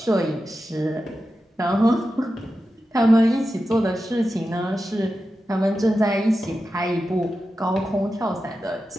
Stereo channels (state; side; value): normal; both; correlation 0.91